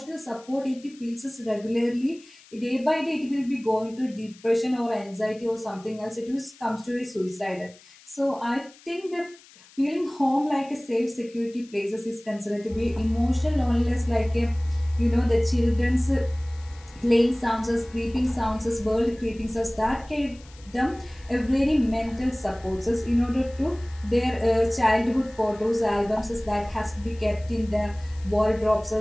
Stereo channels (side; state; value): left; noise; hiss, 24 dB below the sound